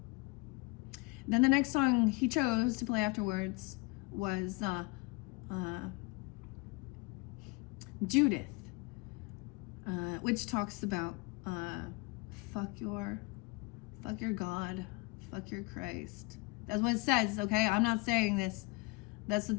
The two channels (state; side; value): quieter; right; 24.9 dB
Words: Then the next song he chose to play afterwards was Judith, which talks about fuck your God, fuck your Christ. That's what it says, okay? I'm not saying this. That's